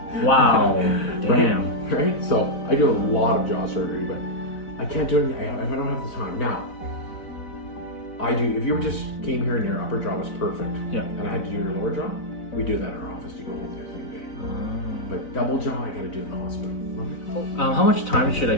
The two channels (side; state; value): right; late; 4.0 ms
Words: Wow. Damn. Right? So I do a lot of jaw surgery, but I can't do it if I don't have the time. Now, I do, if you just came here and your upper jaw was perfect, and I had to do your lower jaw, we do that in our office. You go home the same day. But double jaw, I gotta do in the hospital. How much time should I